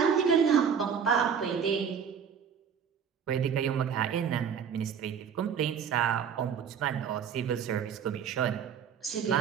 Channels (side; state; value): left; quieter; 7.4 dB